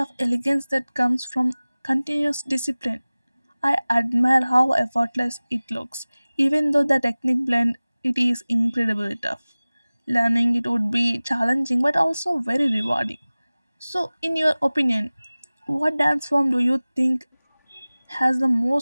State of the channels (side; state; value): both; inverted; correlation -0.99